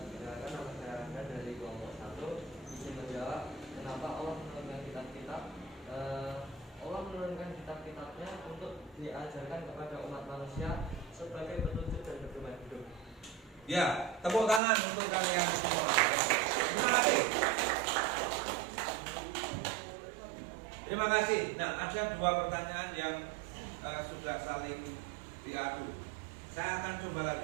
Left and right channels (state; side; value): drops out; left; at 14.6 s